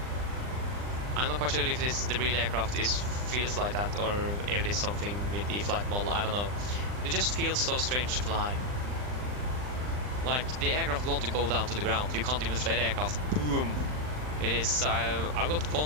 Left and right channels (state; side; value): late; left; 39 ms